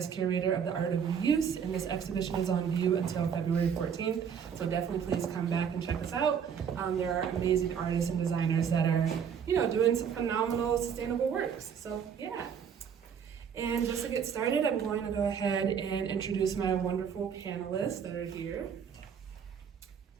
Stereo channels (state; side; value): quieter; left; 7.5 dB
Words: curator of the Art of ReUse, and this exhibition is on view until February 14th, so definitely please come back and check us out. There are amazing artists and designers that are, doing some phenomenal sustainable works, so yeah. And just to get started, I'm going to go ahead and introduce my wonderful panelists that are here.